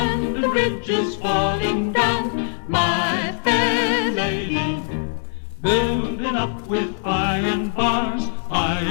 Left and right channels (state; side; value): silent; right; digital silence